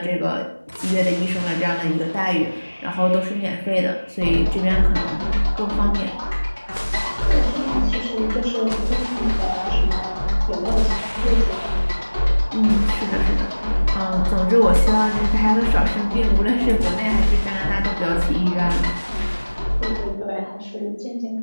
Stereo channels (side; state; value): both; inverted; correlation -1.00